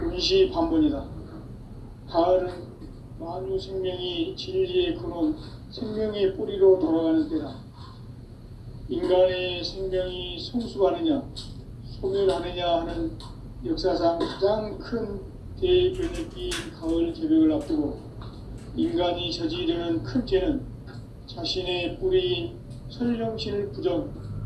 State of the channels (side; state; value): both; identical; correlation 1.00